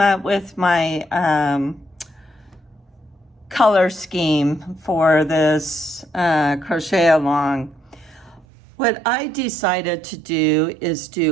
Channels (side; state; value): left; drops out; at 8.5 s